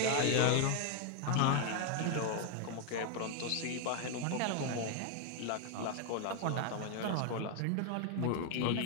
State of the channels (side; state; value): both; different; correlation 0.00